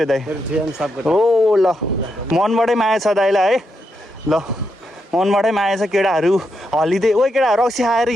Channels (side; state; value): both; normal; correlation 0.83